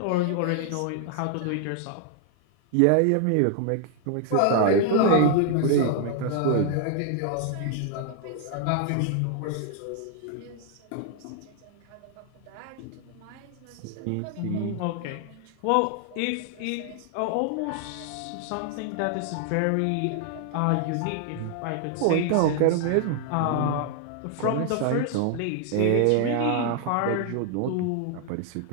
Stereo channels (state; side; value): different; both; correlation 0.00